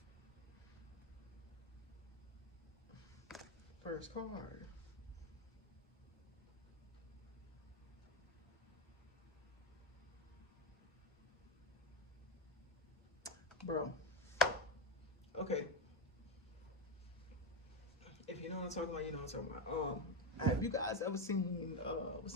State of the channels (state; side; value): normal; both; correlation 0.09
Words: First card. Bro. Okay. If you know what I'm talking about, you know what I'm talking about. Have you guys ever seen what's